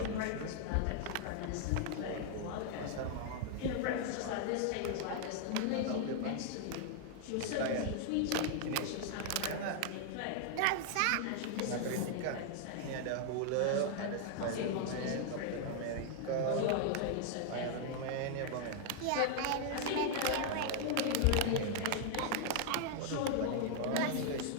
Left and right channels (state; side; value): different; both; correlation 0.00